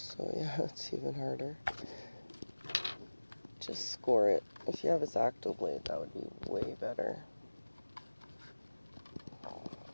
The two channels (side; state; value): both; inverted; correlation -1.00